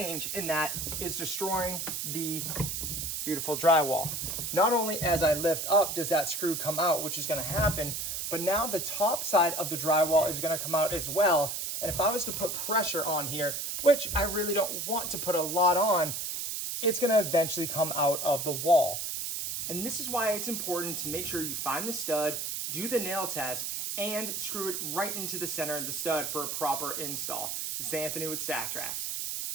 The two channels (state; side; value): noise; right; hiss, 3 dB below the sound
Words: in that is destroying the beautiful drywall. Not only as I lift up does that screw come out, which is gonna happen, but now the top side of the drywall is gonna come out as well. And if I was to put pressure on here, which I really don't want to put a lot on, it's gonna eventually come out of the wall. And this is why it's important to make sure you find the stud, do the nail test, and screw it right into the center of the stud for a proper install. This is Anthony with StackTrax.